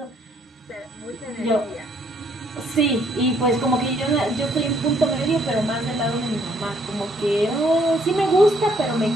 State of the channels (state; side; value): normal; both; correlation 0.67